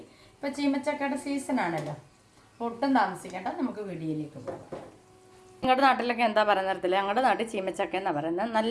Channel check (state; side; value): identical; both; correlation 1.00